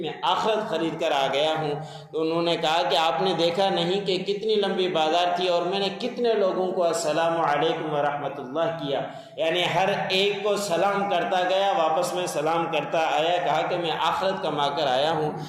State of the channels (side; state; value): both; identical; correlation 1.00